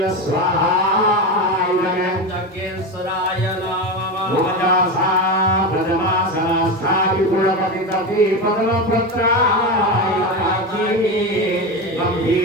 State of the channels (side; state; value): both; normal; correlation 0.19